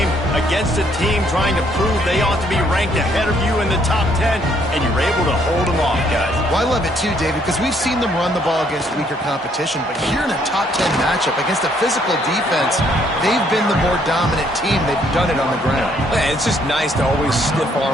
against a team trying to prove they ought to be ranked ahead of you in the top 10, and you're able to hold them off, guys. Well, I love it too, David, because we've seen them run the ball against weaker competition, but here in a top 10 matchup against a physical defense, they've been the more dominant team. They've done it on the ground. Man, it's just nice to always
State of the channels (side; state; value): both; normal; correlation 0.67